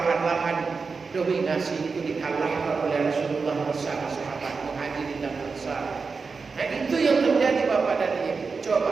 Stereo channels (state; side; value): quieter; left; 4.7 dB